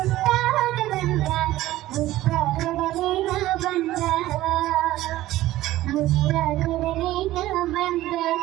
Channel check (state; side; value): quieter; left; 15.6 dB